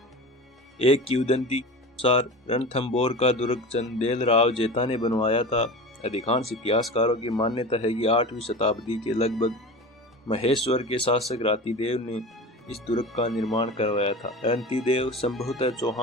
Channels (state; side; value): normal; both; correlation 0.32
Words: एक किंवदंती के अनुसार रणथंभौर का दुर्ग चंदेल राव जेता ने बनवाया था। अधिकांश इतिहासकारों की मान्यता है कि 8वीं शताब्दी के लगभग महेश्वर के शासक रातिदेव ने इस दुर्ग का निर्माण करवाया था। रातिदेव संभवतः